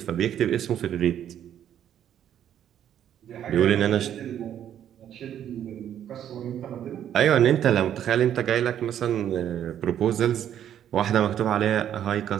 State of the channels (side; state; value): left; quieter; 10.2 dB